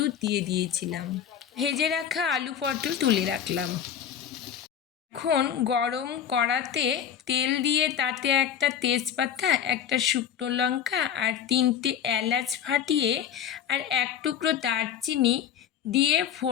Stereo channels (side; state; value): right; quieter; 8.9 dB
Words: দিয়ে দিয়েছিলাম। ভেজে রাখা আলু পটল তুলে রাখলাম। এখন গরম কড়াতে তেল দিয়ে তাতে একটা তেজপাতা, একটা শুকনো লঙ্কা আর 3টে এলাচ ফাটিয়ে আর এক টুকরো দারচিনি দিয়ে